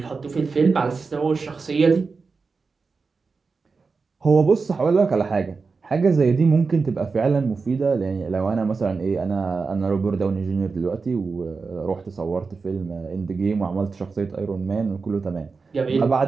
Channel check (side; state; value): left; quieter; 4.6 dB